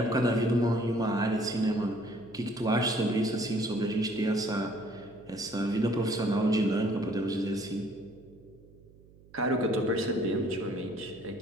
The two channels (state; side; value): noise; right; hum, 25 dB below the sound